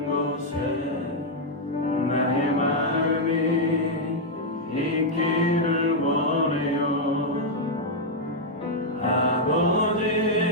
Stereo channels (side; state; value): both; normal; correlation -0.02